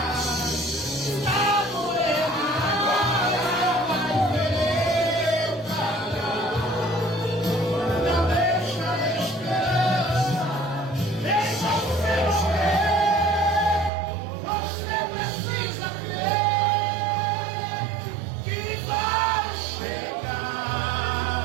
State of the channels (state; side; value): drops out; left; at 13.9 s